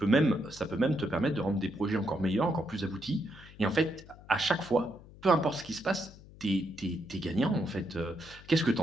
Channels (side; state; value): left; noise; hum, 20 dB below the sound